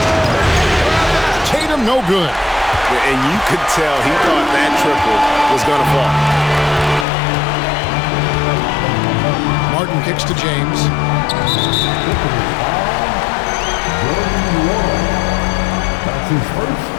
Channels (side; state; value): right; drops out; at 7.1 s